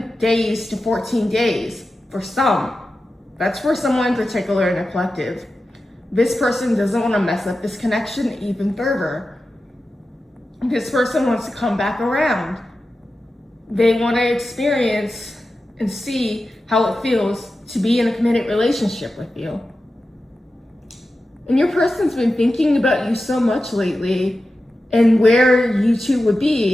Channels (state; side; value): normal; both; correlation 0.93